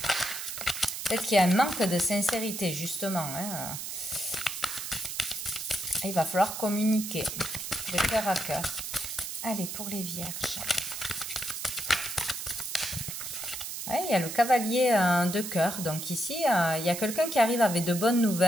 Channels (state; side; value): noise; right; hiss, 6 dB below the sound